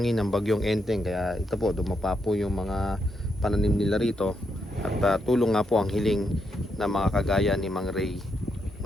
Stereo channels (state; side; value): normal; both; correlation 0.80